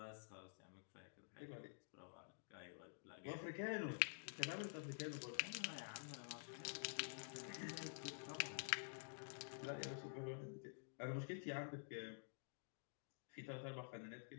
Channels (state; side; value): silent; right; digital silence